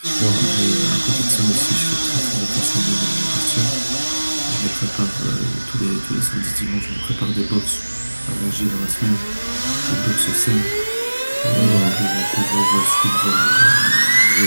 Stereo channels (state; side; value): inverted; both; correlation -1.00